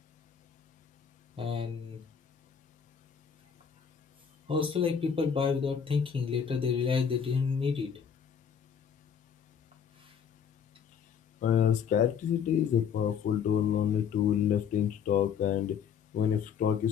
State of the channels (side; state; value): right; quieter; 7.4 dB